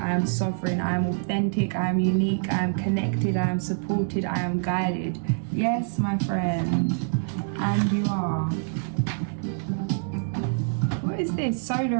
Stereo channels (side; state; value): left; silent; digital silence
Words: am sovereign, I am authentic, I am unique, I am connected, I am supported, I am guided. Yes, my friend. And you are. What is this?